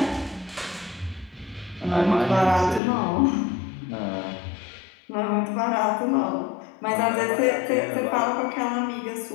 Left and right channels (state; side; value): drops out; right; at 2.8 s